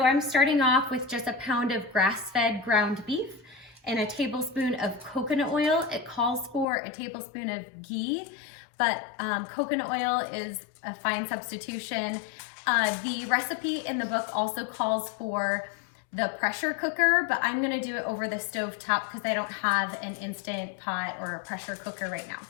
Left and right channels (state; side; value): drops out; right; at 6.7 s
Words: I'm starting off with just a pound of grass-fed ground beef and a tablespoon of coconut oil. It calls for a tablespoon of ghee, but coconut oil is a fine substitution. The recipe in the book also calls for the pressure cooker, but I'm gonna do it over the stove top because I don't have an instant pot or a pressure cooker right now.